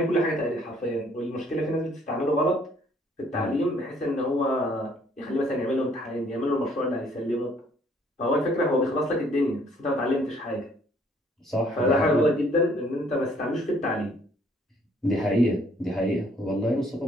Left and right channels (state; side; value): normal; both; correlation 0.62